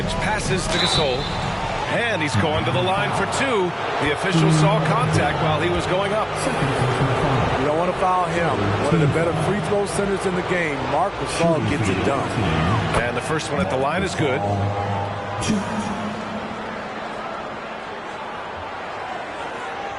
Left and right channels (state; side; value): identical; both; correlation 1.00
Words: passes to Gasol. And he's going to the line for 2. The official saw contact while he was going up. You don't want to foul him. One of the better free throw centers in the game. Marc Gasol gets it done. And the first one at the line is good.